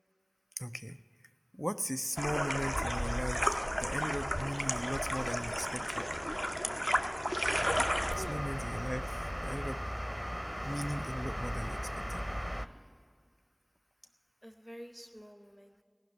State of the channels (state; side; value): identical; both; correlation 1.00